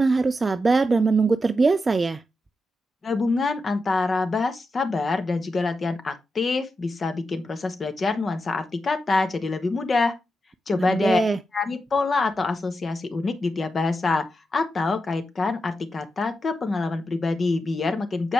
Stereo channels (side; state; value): both; normal; correlation 0.87